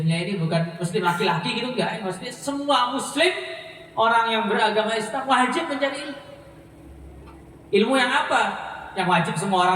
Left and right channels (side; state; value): both; identical; correlation 1.00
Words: ini bukan muslim laki-laki gitu, enggak. Maksudnya semua muslim, orang yang beragama Islam wajib mencari ilmu. Ilmu yang apa? Yang wajib semua